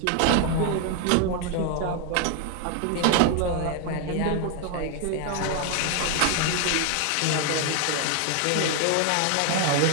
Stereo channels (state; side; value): different; both; correlation 0.00